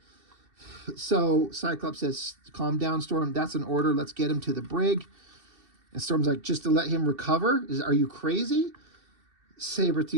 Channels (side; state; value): left; late; 2.7 ms